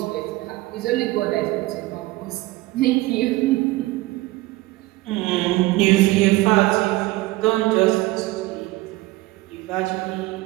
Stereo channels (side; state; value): left; quieter; 19.4 dB